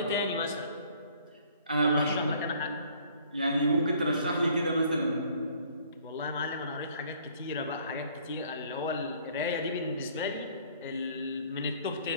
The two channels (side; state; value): both; inverted; correlation -0.58